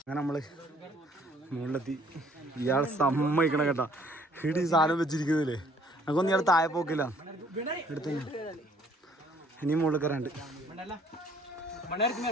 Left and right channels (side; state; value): both; normal; correlation 0.61